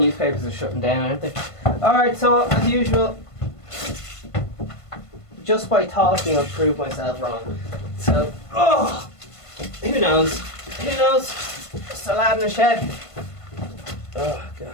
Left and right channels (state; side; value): late; right; 1.5 ms